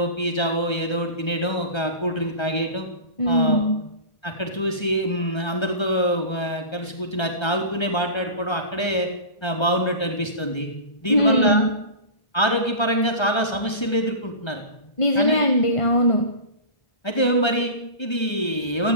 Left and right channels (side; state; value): right; late; 1.3 ms